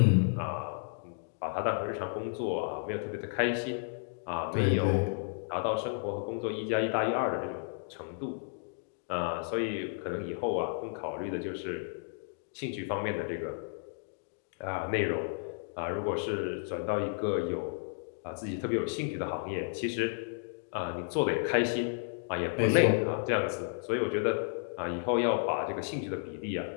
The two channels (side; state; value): right; silent; digital silence